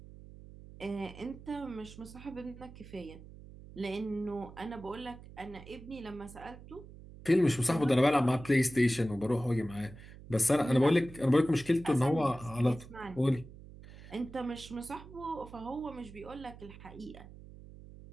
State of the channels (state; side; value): noise; right; hum, 17 dB below the sound